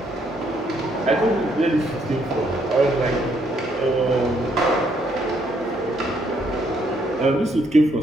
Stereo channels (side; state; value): both; normal; correlation 0.71